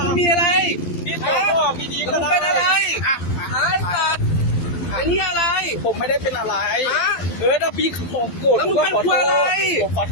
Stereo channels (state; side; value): late; right; 12 ms